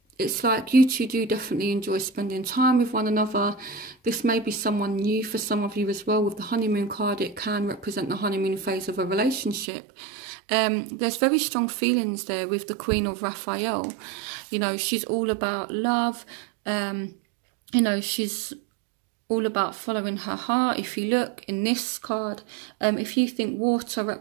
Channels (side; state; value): left; drops out; at 9.7 s